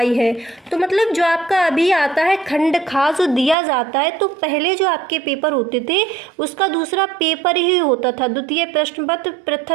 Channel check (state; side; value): drops out; left; at 3.6 s